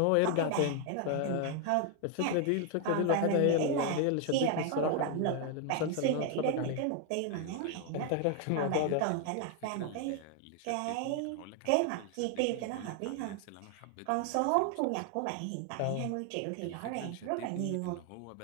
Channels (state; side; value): different; both; correlation 0.00